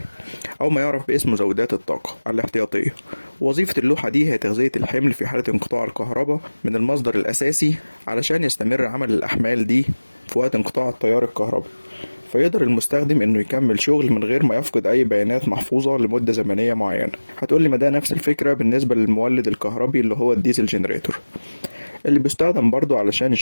أو ما يعرف باسم مزودات الطاقة الاحتياطية. وظيفة اللوحة دي هي تغذية الحمل في حالة انقطاع الكهرباء من المصدر الأساسي علشان يستمر عمل الأحمال دي في وقت انقطاع التيار الكهربي، فيقدر المستخدم انه يكمل شغل من غير ما يفقد اي بيانات محفوظة لمدة زمنية معينة. هتقولي ما ده نفس الفكرة بالنسبة للمولد الكهربي اللي هو الديزل جنريتور، اللي بيستخدم برضو علشان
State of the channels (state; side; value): inverted; both; correlation -1.00